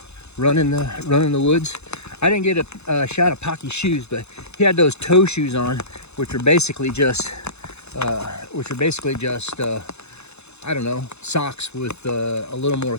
running the woods. I didn't get a shot of Pocky's shoes, but he had those toe shoes on, which are basically just I don't know, socks with a little more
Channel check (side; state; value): right; late; 0.81 ms